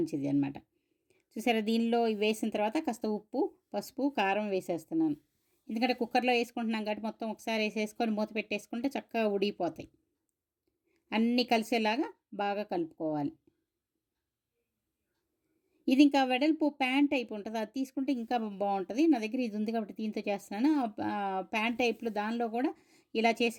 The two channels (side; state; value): both; identical; correlation 1.00